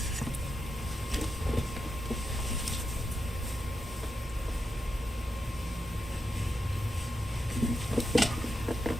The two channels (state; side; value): normal; both; correlation 0.86